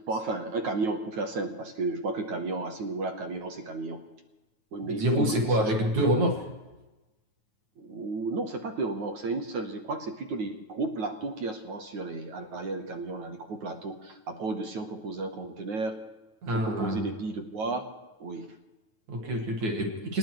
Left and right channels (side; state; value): left; late; 9.3 ms